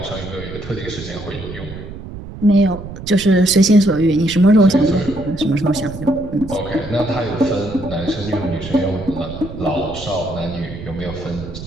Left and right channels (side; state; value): right; noise; rumble, 12 dB below the sound